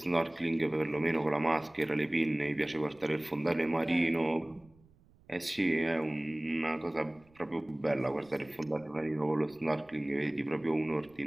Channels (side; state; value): right; noise; rumble, 30 dB below the sound